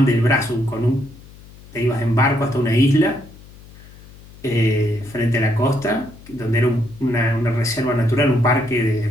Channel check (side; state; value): left; noise; hum, 21 dB below the sound